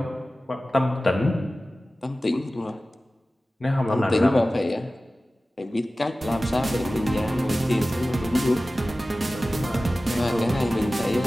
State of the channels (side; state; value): both; normal; correlation 0.96